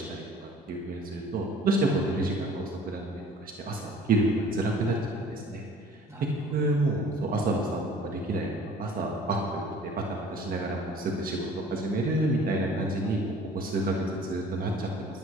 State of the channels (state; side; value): normal; both; correlation 0.50